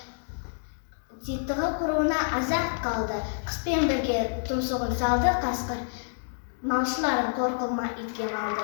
титығы құруына азат қалды. Қыспен бірге тұмсығын салды қасқыр, малшыларын қорқылма итке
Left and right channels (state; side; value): silent; right; digital silence